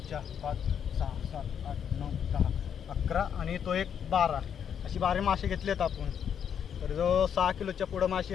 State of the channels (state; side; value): quieter; right; 8.2 dB